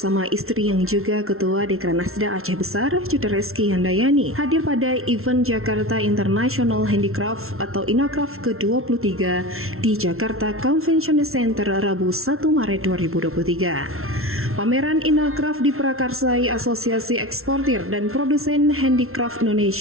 istri yang juga Ketua Dekranasda Aceh Besar, Judereski Handayani, hadir pada event Jakarta International Handicraft atau Inacraft ke-23 di Jakarta Convention Center Rabu 1 Maret 2023. Pameran Inacraft diprakarsai Asosiasi Eksportir dan Produsen Handicraft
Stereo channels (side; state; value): left; late; 0.62 ms